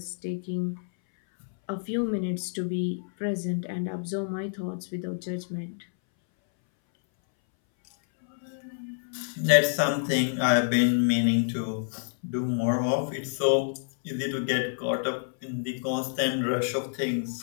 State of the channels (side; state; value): right; silent; 59 dB below the other